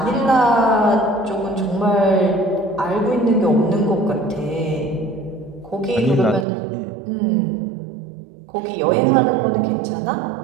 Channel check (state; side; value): drops out; left; at 6.5 s